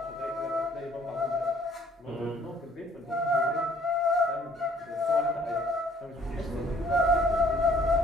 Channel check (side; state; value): both; normal; correlation 0.59